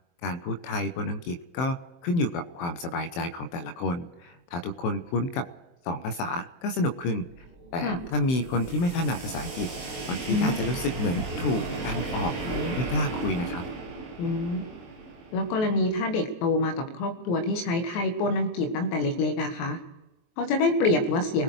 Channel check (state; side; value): late; right; 23 ms